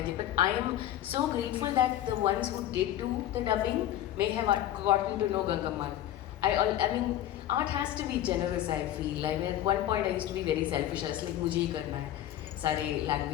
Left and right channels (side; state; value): right; quieter; 12.6 dB